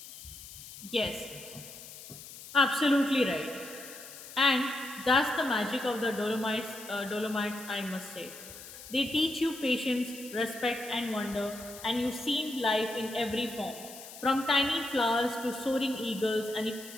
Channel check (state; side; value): noise; left; hiss, 14 dB below the sound